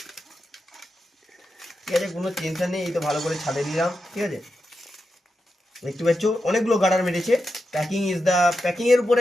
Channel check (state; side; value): normal; both; correlation 0.88